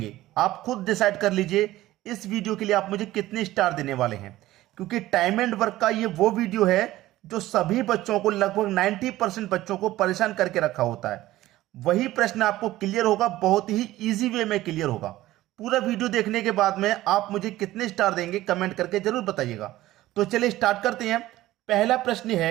आप खुद डिसाइड कर लीजिए। इस वीडियो के लिए आप मुझे कितने स्टार देने वाले हैं, क्योंकि टाइम एंड वर्क का ये वो वीडियो है जो सभी बच्चों को, लगभग 90% बच्चों को परेशान करके रखा होता है। वही प्रश्न आपको क्लियर होगा, बहुत ही ईजी वे में क्लियर होगा। पूरा वीडियो देखने के बाद में आप मुझे कितने स्टार देंगे कमेंट करके जरूर बताइएगा। तो चलिए स्टार्ट करते हैं। पहला प्रश्न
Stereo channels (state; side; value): quieter; left; 16.0 dB